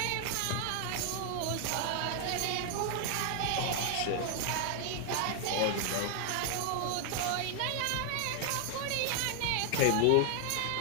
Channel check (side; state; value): both; different; correlation 0.00